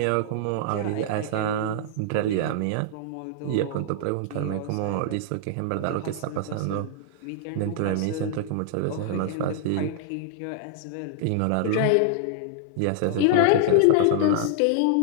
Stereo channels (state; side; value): different; both; correlation -0.01